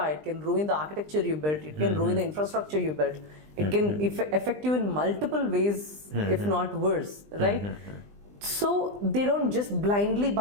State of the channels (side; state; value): left; late; 20 ms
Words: it can ruin the architecture you built, it can ruin the infrastructure you built. It can affect you in multiple ways, if not worse, right? So they don't just blindly